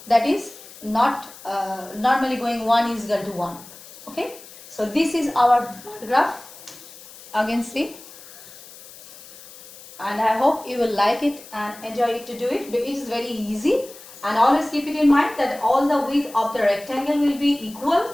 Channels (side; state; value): left; noise; hiss, 18 dB below the sound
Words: that is not normally going 1 is equal to 1. Okay, so this is our graph. Again, see, and I hope you will like it and enjoy it to do it. It is very easy, and always keep it in mind that all the width of the rectangle will be equal